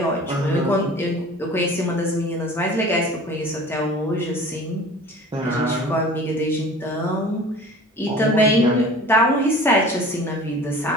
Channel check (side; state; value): both; normal; correlation 0.43